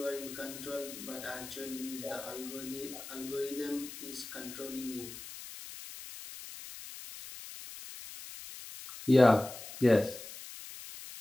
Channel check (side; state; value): left; noise; hiss, 12 dB below the sound